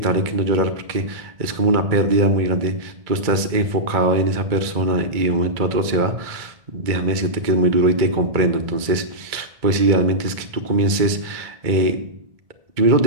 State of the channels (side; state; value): left; late; 2.2 ms